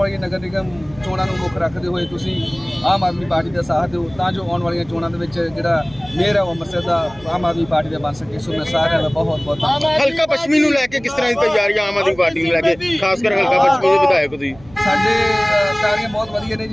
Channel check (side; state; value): right; noise; hum, 23 dB below the sound